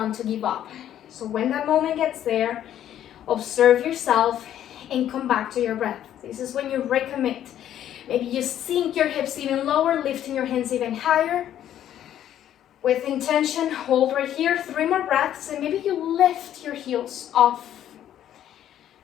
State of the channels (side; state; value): right; quieter; 11.1 dB